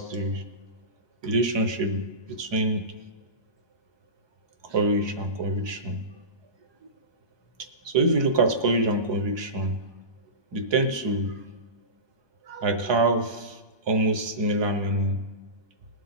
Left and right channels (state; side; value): late; left; 1.2 ms